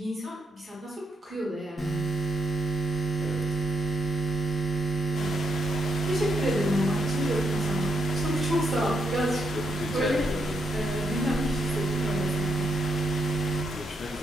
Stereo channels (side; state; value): both; normal; correlation 0.79